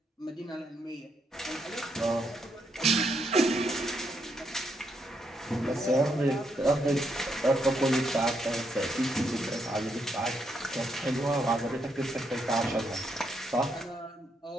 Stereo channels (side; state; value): both; normal; correlation 0.77